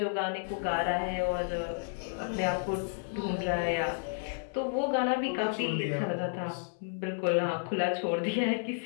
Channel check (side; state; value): right; silent; digital silence